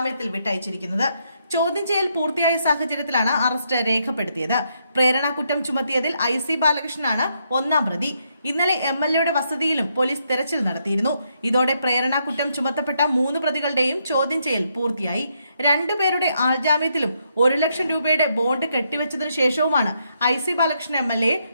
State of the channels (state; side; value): inverted; both; correlation -0.77